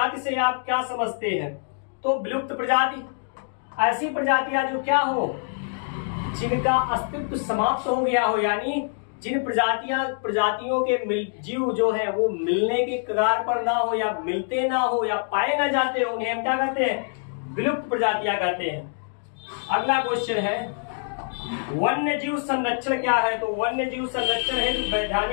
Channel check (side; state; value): right; silent; 60 dB below the other